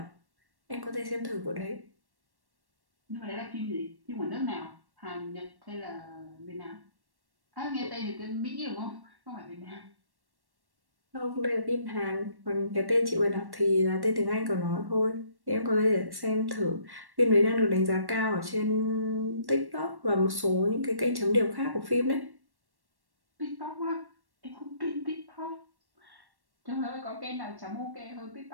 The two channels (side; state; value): left; late; 1.1 ms